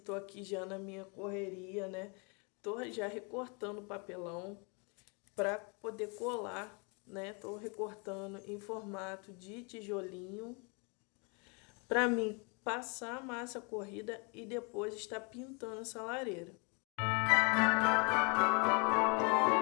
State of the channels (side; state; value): right; quieter; 33.7 dB